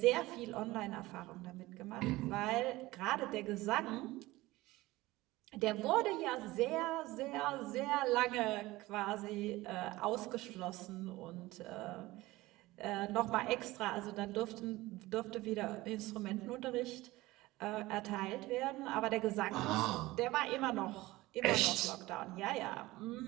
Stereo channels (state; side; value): quieter; left; 19.0 dB